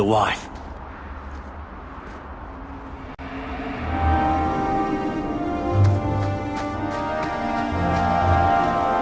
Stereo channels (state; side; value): identical; both; correlation 1.00